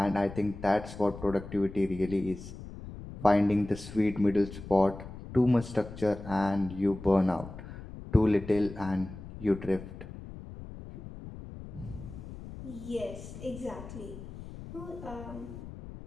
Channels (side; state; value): left; noise; rumble, 13 dB below the sound